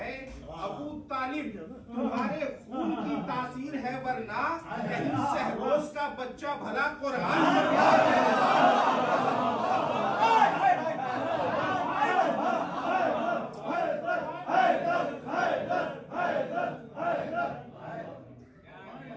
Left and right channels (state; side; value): identical; both; correlation 1.00